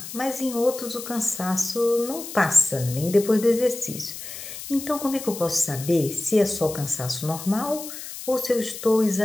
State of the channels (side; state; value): left; noise; hiss, 11 dB below the sound